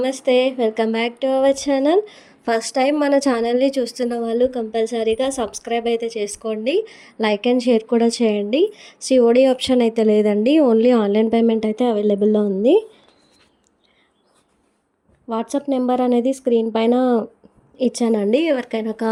Welcome back to our channel. First time మన ఛానల్ని చూస్తున్న వాళ్ళు కంపల్సరీగా సబ్స్క్రైబ్ అయితే చేసుకోండి. లైక్ అండ్ షేర్ కూడా చేయండి. సిఓడి ఆప్షన్ అయితే లేదండి. ఓన్లీ ఆన్లైన్ పేమెంట్ అయితే అవైలబుల్లో ఉంది. వాట్సాప్ నెంబర్ అనేది స్క్రీన్ పైన ఇచ్చానండి. ఎవరికైనా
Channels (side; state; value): both; identical; correlation 1.00